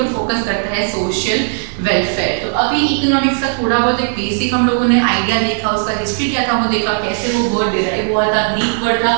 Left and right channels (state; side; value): silent; left; 56 dB below the other